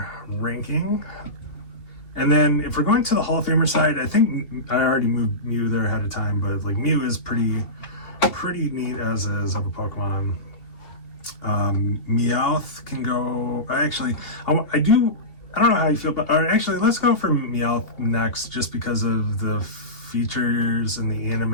ranking. And then if we're going to the Hall of Famer side, I think I already moved Mew there ahead of time, but like Mew is pretty neat as is of a Pokemon. Meowth can go. I don't know how you feel, but actually, let's go for Meowth next, just because of the features in the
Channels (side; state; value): right; late; 2.7 ms